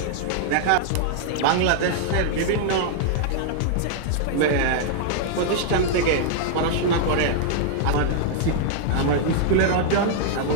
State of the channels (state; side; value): different; both; correlation -0.01